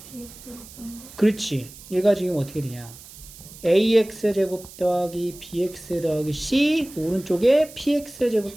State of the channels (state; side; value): noise; right; hiss, 18 dB below the sound